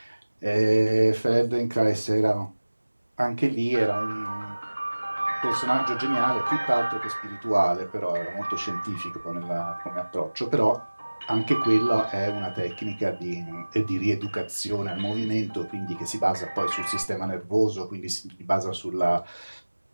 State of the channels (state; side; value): inverted; both; correlation -1.00